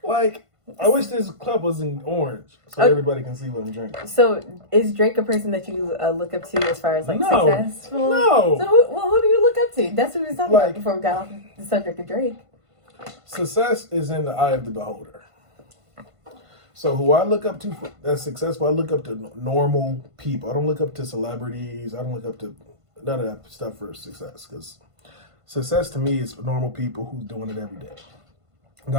Like, I wish this cup was in orange so everybody can see what I'm drinking. So, is Drake a person that you look up to as far as like successful? No. So, who do you look up to? That's what we was talking about before we got off the subject of Drake. Success is in the eye of the beholder. So who I look up to that's successful, I look up to normal people. I don't look up to celebrities. I don't look up to none of that stuff for success. Because success to me is normal people who's doing it every day. And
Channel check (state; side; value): late; left; 1.5 ms